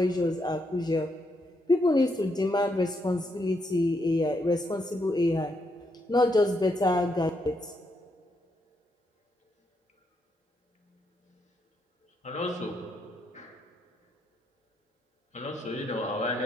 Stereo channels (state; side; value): normal; both; correlation 0.78